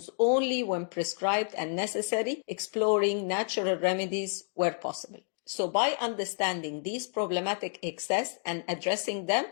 only when prescribed and necessary, exploring natural remedies where possible. So by understanding these problematic excess and addressing them,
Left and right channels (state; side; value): silent; right; digital silence